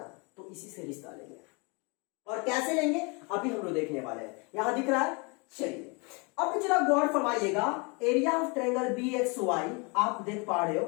तो इसी से रिश्ता लेंगे। और कैसे लेंगे अभी हम लोग देखने वाले हैं। यहां दिख रहा है, चलिए अब जरा गौर फरमाइएगा, area of triangle B X Y आप देख पा रहे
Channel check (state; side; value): quieter; right; 31.1 dB